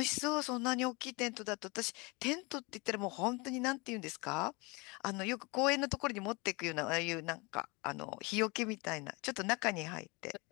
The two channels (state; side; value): quieter; right; 27.3 dB